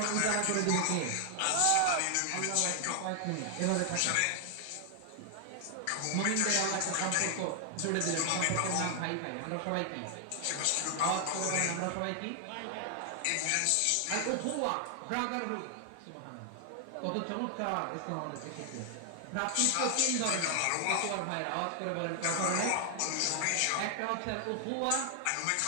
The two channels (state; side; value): different; both; correlation 0.00